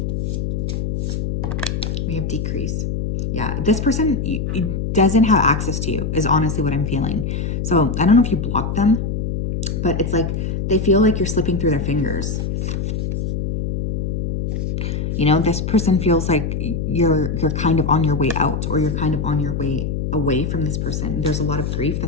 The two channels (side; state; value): left; noise; hum, 1 dB below the sound